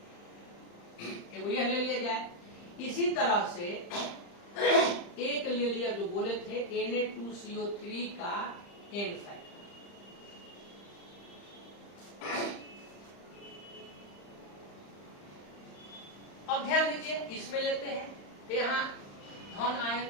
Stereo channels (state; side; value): late; right; 35 ms